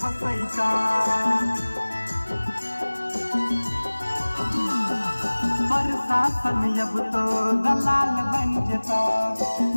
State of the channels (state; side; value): inverted; both; correlation -1.00